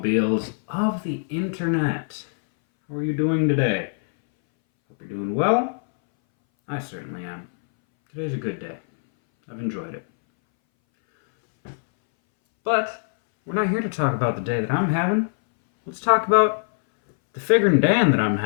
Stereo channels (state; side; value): silent; right; 62 dB below the other